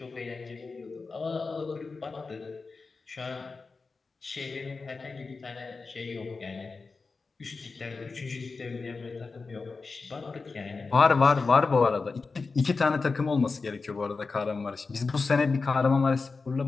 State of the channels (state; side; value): quieter; right; 4.2 dB